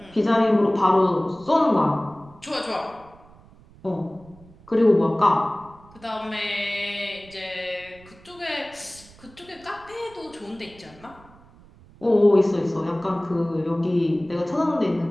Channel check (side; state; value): right; noise; rumble, 24 dB below the sound